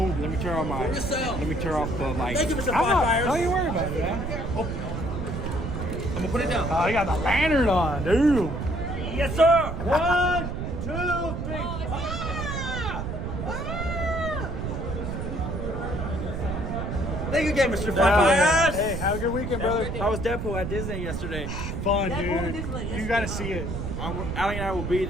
Let me turn off my. Yourself. Let me turn off the light. Thank you, Mr. I'm not. Firefighters. Don't you worry about it, man. Oh. I'm gonna put it down. Oh, you got the lantern on, dude. Yes, sir. 1, 2, 3. Thank you again, Mr. Firefighters. Hey, have a good weekend, brother. I was Deadpool at Disney yesterday. Fun, dude. You gotta see it. Ali and I will be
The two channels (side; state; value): right; noise; rumble, 4 dB below the sound